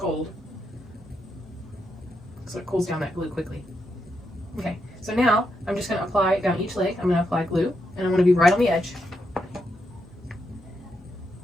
So it cools down that glue quickly. Okay, so now I'm just going to apply down each leg. I'm going to apply glue, and I'm going to be right on the edge.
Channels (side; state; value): both; normal; correlation 0.82